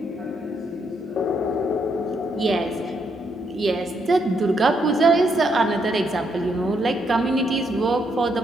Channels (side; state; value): both; normal; correlation 0.76